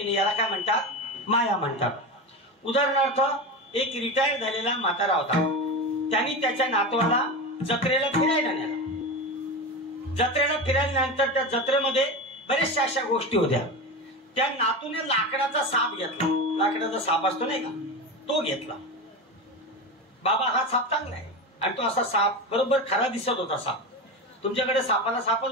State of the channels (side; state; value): both; normal; correlation 0.22